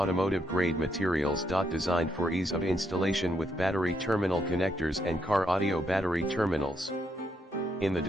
grade materials. Designed for ease of installation with battery terminal connectors and car audio battery terminals. In the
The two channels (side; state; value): both; normal; correlation 0.77